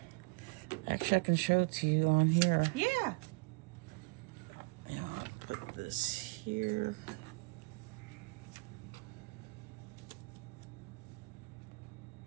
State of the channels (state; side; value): quieter; left; 28.5 dB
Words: Actually, I can show it to you on here. Yeah. And I'll put this here.